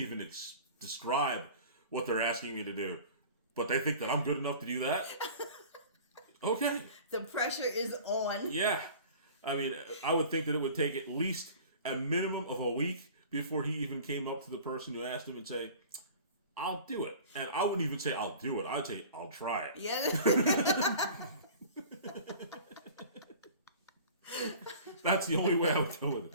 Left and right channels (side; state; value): both; inverted; correlation -0.42